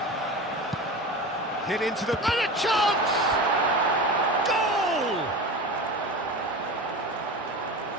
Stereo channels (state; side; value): normal; both; correlation 0.29